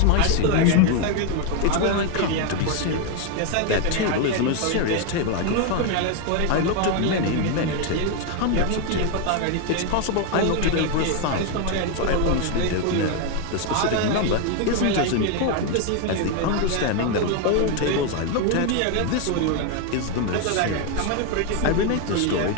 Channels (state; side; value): different; both; correlation 0.01